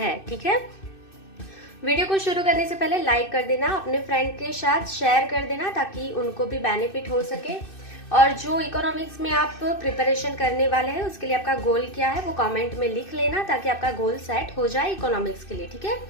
ठीक है, वीडियो को शुरू करने से पहले लाइक कर देना, अपने फ्रेंड के साथ शेयर कर देना ताकि उनको भी बेनिफिट हो सके। और जो इकोनॉमिक्स में आप प्रिपरेशन करने वाले हैं उसके लिए आपका गोल क्या है वो कमेंट में लिख लेना ताकि आपका गोल सेट हो जाए इकोनॉमिक्स के लिए। ठीक है,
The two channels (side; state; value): right; late; 2.6 ms